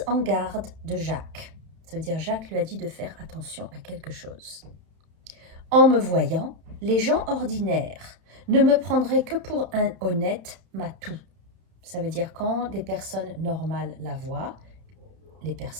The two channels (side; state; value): left; late; 31 ms